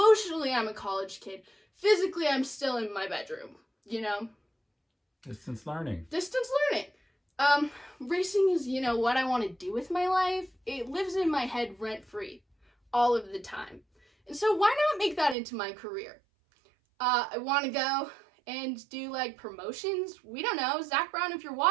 I'm a college kid. Physically, I'm still in my bedroom, Distance learning. Distance learning. Racing is, what I want to do with my life. It lives in my head rent-free all of the time. And so why not make that into my career? I want to go and do, promotions. We don't know. Zach Brown, if you're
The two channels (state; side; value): drops out; left; at 15.4 s